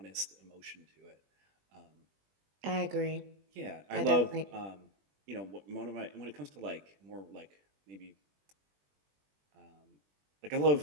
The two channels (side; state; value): left; late; 20 ms